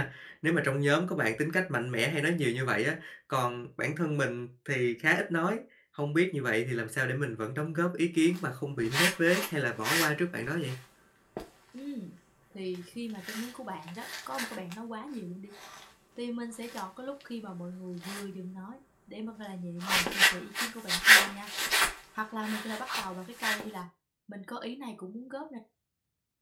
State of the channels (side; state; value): both; identical; correlation 1.00